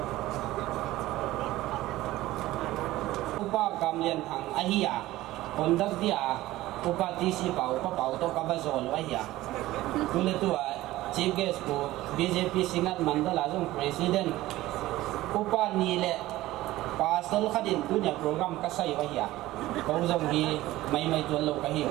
upa kamlian thang ahia kondak dia upa tisi pau to kabazol ahia tule tua chief guest ko BJP singat mandala jong president upa nile pasal khadin punya program kasai wahia kau jong hi mai tuan lo kahiu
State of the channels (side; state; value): left; quieter; 16.7 dB